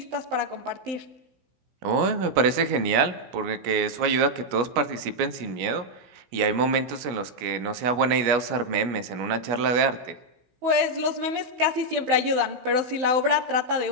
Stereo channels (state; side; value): late; left; 16 ms